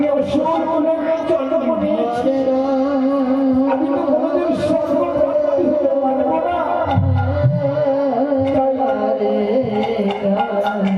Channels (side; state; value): both; identical; correlation 1.00